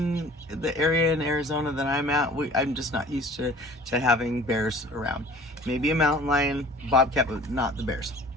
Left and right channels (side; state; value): both; normal; correlation 0.47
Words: the area in Arizona that I'm at. I'm just not used to having bears around. Maybe a mountain lion, bobcat, but not the bears.